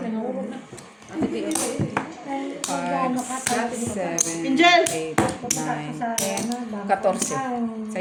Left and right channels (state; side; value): identical; both; correlation 1.00